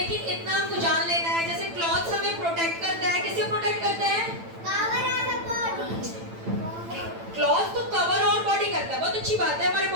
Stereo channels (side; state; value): left; late; 8.9 ms